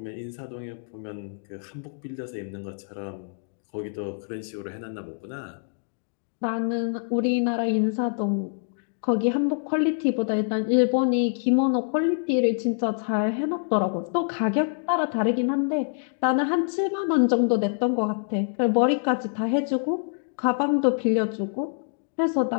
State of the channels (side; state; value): right; silent; digital silence